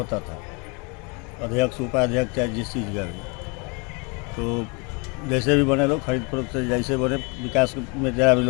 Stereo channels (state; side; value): quieter; right; 31.7 dB